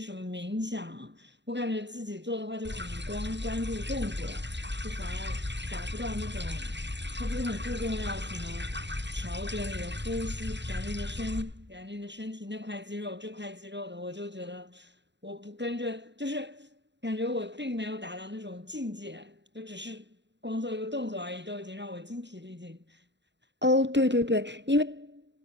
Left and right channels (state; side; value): late; left; 0.52 ms